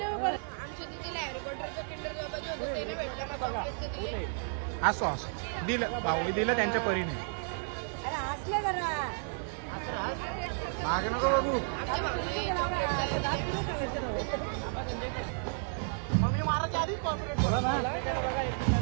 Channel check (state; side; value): silent; left; 56 dB below the other